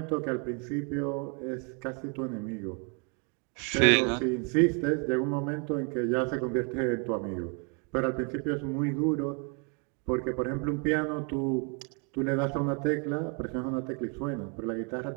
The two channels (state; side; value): quieter; left; 36.2 dB